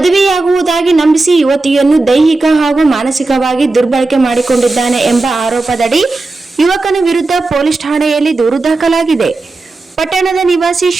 ನಂಬಿಸಿ ಯುವತಿಯನ್ನು ದೈಹಿಕ ಹಾಗೂ ಮಾನಸಿಕವಾಗಿ ದುರ್ಬಳಕೆ ಮಾಡಿಕೊಂಡಿದ್ದಾನೆ ಎಂಬ ಆರೋಪದಡಿ ಯುವಕನ ವಿರುದ್ಧ ಪೊಲೀಸ್ ಠಾಣೆಯಲ್ಲಿ ದೂರು ದಾಖಲಾಗಿದೆ. ಪಟ್ಟಣದ ನಿವಾಸಿ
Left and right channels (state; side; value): quieter; left; 3.3 dB